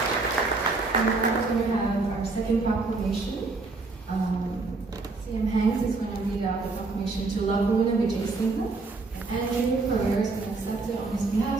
And now we have our second proclamation. CM Hanks is going to read out the proclamation to Laguna Vijay Singh. And Andrew Pereira is going to accept it on his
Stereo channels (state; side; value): quieter; left; 3.7 dB